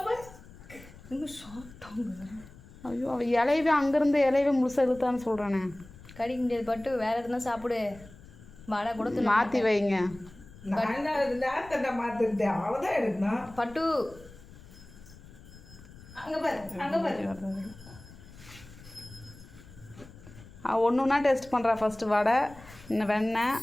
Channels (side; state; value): left; noise; rumble, 20 dB below the sound